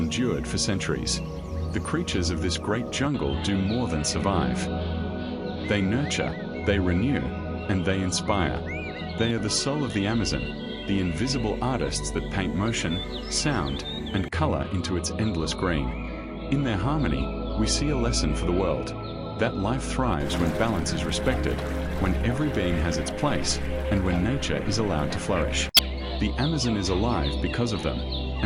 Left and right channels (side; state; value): both; identical; correlation 1.00